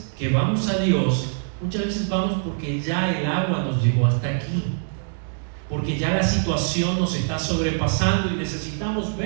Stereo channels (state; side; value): silent; left; digital silence